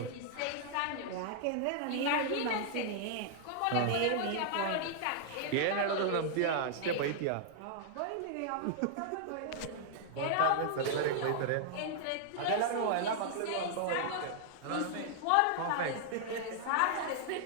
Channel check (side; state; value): both; different; correlation -0.01